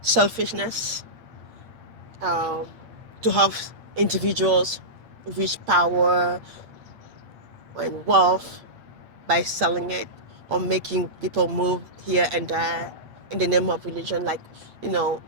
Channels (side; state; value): left; late; 8.7 ms